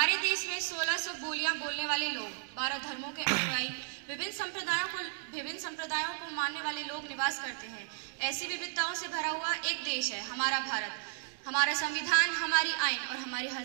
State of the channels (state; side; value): silent; left; digital silence